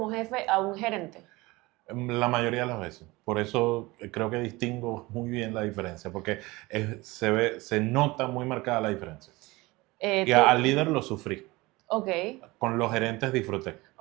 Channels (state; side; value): quieter; left; 21.7 dB